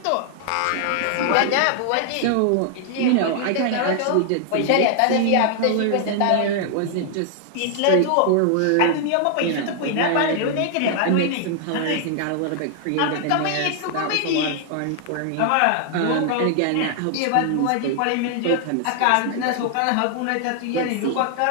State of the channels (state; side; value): different; both; correlation 0.00